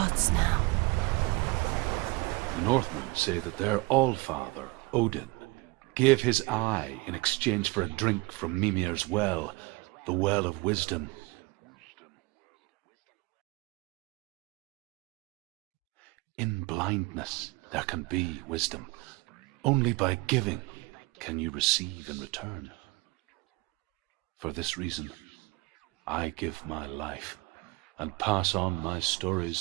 now. Nothing is yours anymore. The Northmen say that their Allfather, Odin, gave his eye in exchange for a drink from Mimir's well, the well of wisdom. In blindness, there can be wisdom. Only by giving can you receive in return. For this reason, I give my life and pass on my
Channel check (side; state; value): left; quieter; 23.9 dB